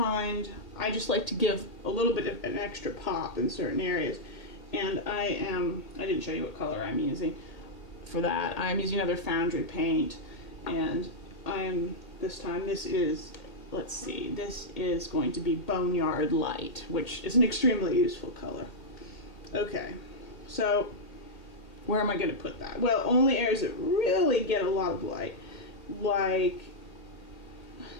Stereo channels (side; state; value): right; late; 1.8 ms